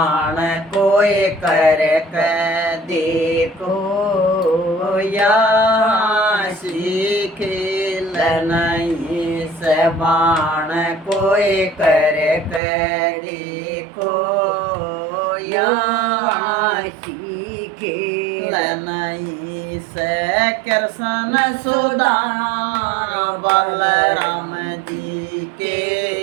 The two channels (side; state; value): left; drops out; at 12.6 s